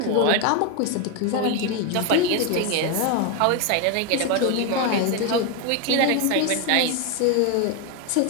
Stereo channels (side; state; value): both; different; correlation 0.02